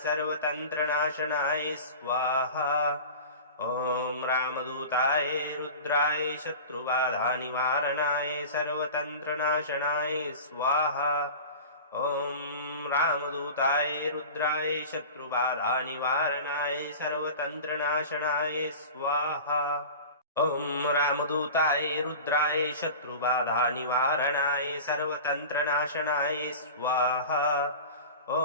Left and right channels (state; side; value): inverted; both; correlation -0.35